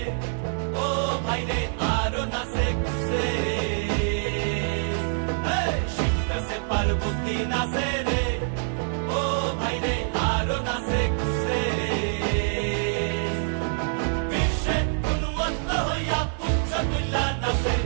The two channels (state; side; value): silent; left; 61 dB below the other